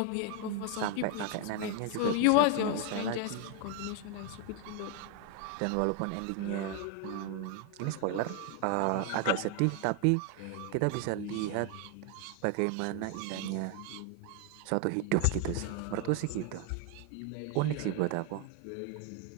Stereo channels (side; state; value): both; different; correlation 0.01